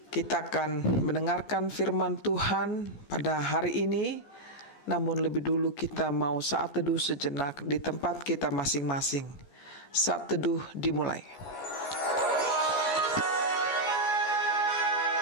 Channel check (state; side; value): late; right; 14 ms